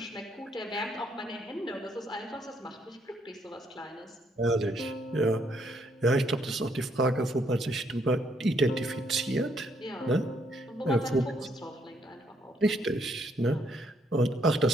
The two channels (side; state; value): both; normal; correlation 0.71